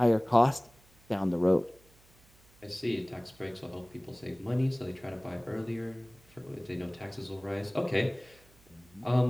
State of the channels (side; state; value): right; noise; hum, 28 dB below the sound